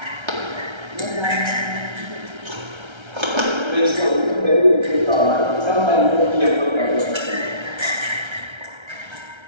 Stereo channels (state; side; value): late; left; 1.3 ms